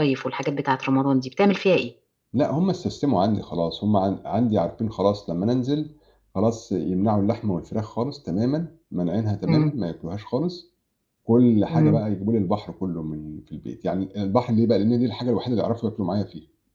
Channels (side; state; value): both; identical; correlation 1.00